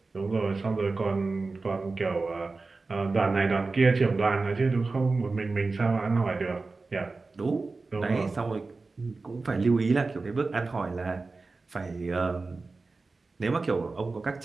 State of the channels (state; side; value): quieter; left; 3.8 dB